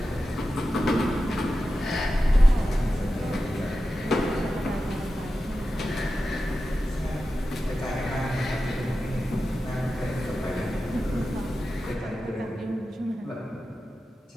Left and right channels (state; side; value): normal; both; correlation 0.92